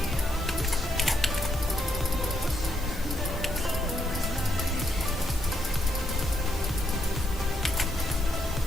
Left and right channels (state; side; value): normal; both; correlation 0.77